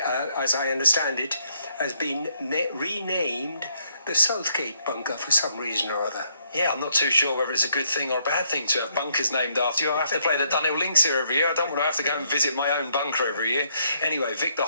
I understand it, has been renamed the Southgate bunker for some reason or other. Yeah, I'm not too sure whether it's a good thing or a bad thing to have bunkers named after you. I have to play the Dunhill Links here every year. I don't want to have to go and visit my own bunker every year. Anyway, Victor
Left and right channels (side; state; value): both; inverted; correlation -0.72